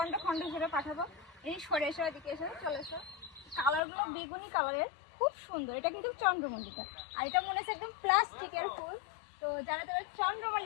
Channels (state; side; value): drops out; right; at 3.8 s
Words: খণ্ড ধরে পাঠাবো। এই সরে এসো, এদিকে এসো, চলে এসো। কালারগুলো বেগুনি কালারের, খুব সুন্দর। এটা কিন্তু চন্দ্রমল্লিকা, আর এটা মনে হচ্ছে একদম প্লাস্টিকের ফুল। তো যারা যারা